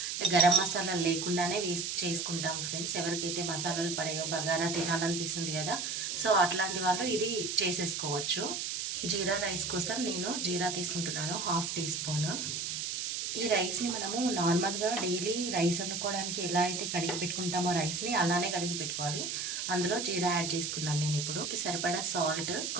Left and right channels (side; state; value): right; noise; hiss, 3 dB below the sound